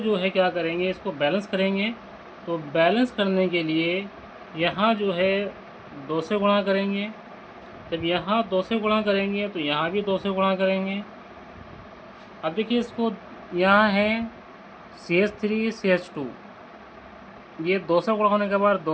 है क्या करेंगे, इसको बैलेंस करेंगे। तो बैलेंस करने के लिए यहाँ जो है 2 से गुणा करेंगे। जब यहाँ 2 से गुणा करेंगे तो यहाँ भी 2 से गुणा करेंगे। अब देखिए इसको, यहाँ है CH3 CH2, ये 2 से गुणा होने के बाद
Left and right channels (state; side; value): identical; both; correlation 1.00